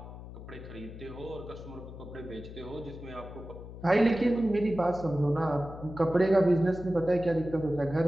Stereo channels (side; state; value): left; noise; hum, 13 dB below the sound